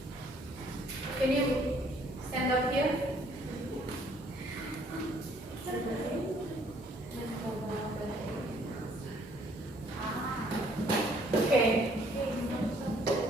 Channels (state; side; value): normal; both; correlation 0.63